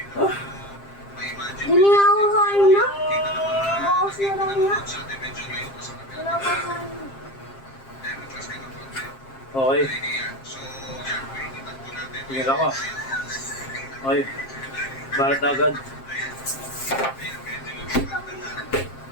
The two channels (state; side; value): late; right; 7.5 ms